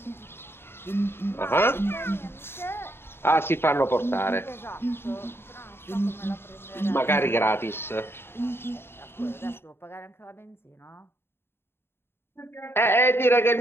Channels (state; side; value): late; right; 0.11 ms